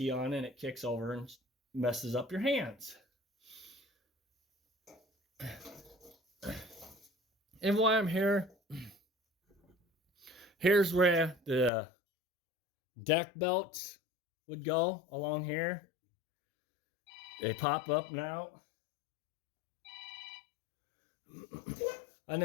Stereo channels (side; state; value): right; drops out; at 11.7 s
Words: on and it kicks over and messes up your hands. And while I'm here, here's where the deck belts would go along here. They pop up and out. And